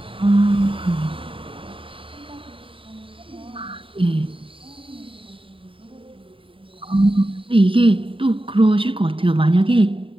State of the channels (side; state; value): left; late; 0.25 ms